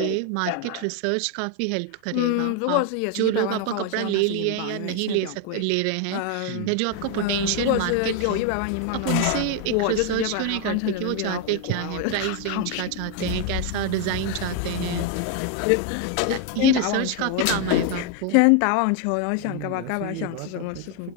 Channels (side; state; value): both; different; correlation 0.01